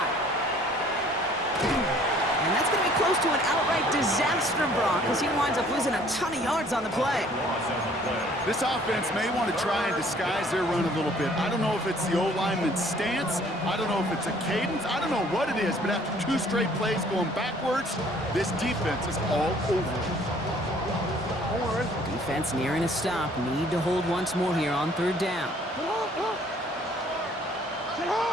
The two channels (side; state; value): both; normal; correlation 0.57